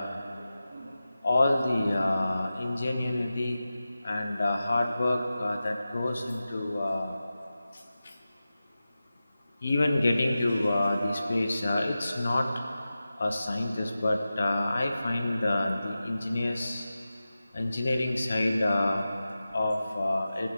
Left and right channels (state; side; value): inverted; both; correlation -0.94